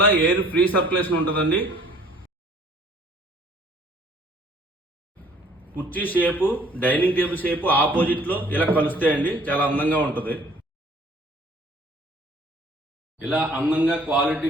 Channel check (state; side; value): normal; both; correlation 0.55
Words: ఎయిర్ ఫ్రీ సర్క్యులేషన్ ఉంటుందండి. కుర్చీ shape dining table shape opposite లో ఇలా కలుస్తాయండి. చాలా అందంగా ఉంటుంది. ఇలా అందంగా